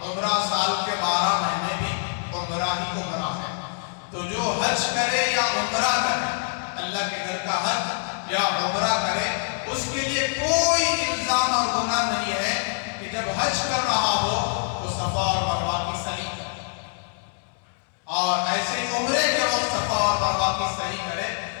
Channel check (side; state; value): right; silent; 62 dB below the other